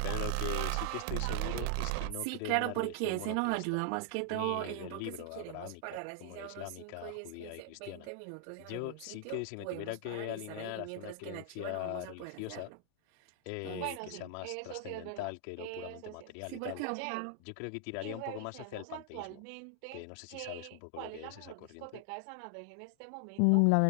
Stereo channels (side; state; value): both; different; correlation 0.00